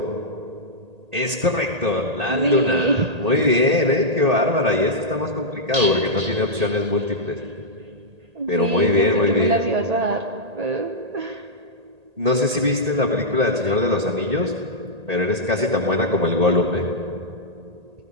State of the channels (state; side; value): late; left; 1.8 ms